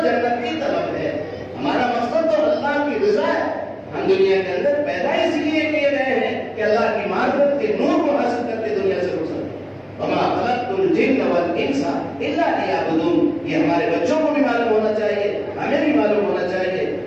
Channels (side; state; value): both; identical; correlation 1.00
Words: جنت کی طلب ہے، ہمارا مقصد تو اللہ کی رضا ہے۔ ہم دنیا کے اندر پیدا اس لیے کیے گئے ہیں کہ اللہ کی معرفت کے نور کو حاصل کر کے دنیا سے گزریں۔ وما خلقت الجن والانس الا لیعبدون۔ یہ ہمارے بچوں کو بھی معلوم ہونا چاہیے، ہمیں بھی معلوم ہونا چاہیے